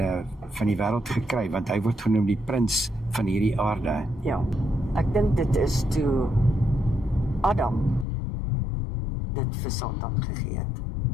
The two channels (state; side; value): drops out; right; at 8.1 s